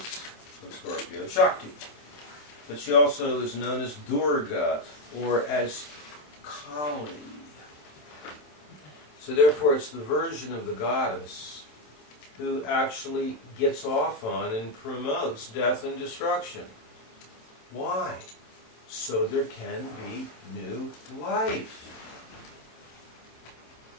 of Scorpio Shakti, but she also is known as Durga or as Kali. So therefore it's the version of the goddess who actually gets off on and promotes death and destruction. Why? So there can be new life.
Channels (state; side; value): late; right; 27 ms